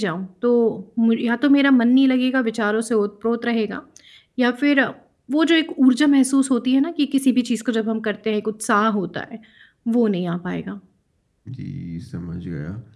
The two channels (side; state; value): both; identical; correlation 1.00